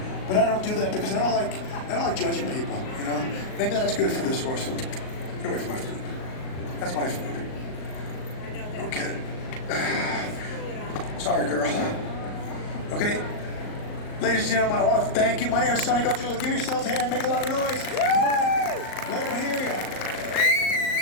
but I don't do that because I don't like judging people. You know, maybe that's good for this horse. Get away from my food. That's my food. Okay. Sorry, girl. Okay. Ladies and gentlemen, I want to thank you. My name is Sonny. Go to give yourselves a hand. Make a lot of noise. Come on. Let them hear you.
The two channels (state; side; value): late; right; 38 ms